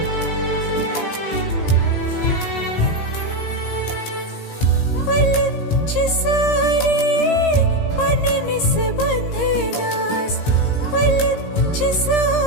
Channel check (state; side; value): late; right; 17 ms